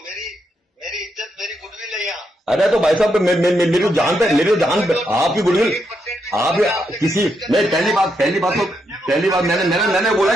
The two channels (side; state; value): both; normal; correlation 0.80